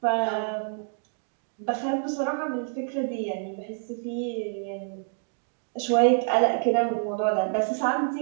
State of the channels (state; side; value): silent; left; 60 dB below the other